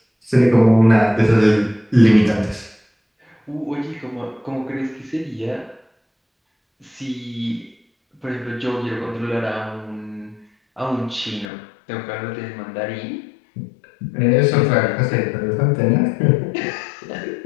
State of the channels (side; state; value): right; drops out; at 11.5 s